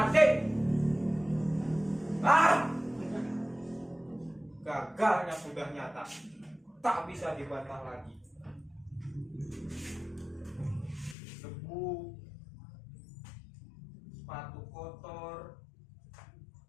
Gagalnya sudah nyata. Tak bisa dibantah lagi. Debu, sepatu kotor,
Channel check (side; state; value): right; drops out; at 11.2 s